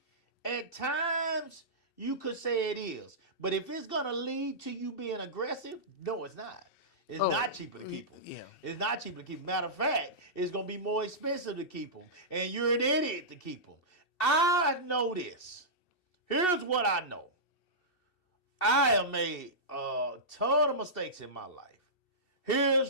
at times, you could say it is. But if it's going to lead to you being aggressive, no, it's not. It's not cheaper to keep them. Yeah. It's not cheaper to keep them. Matter of fact, it's going to be more expensive to keep them. And you're an idiot to keep them. I know this. Here's what I know. I have made a ton of mistakes in my life.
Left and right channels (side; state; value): right; late; 2.7 ms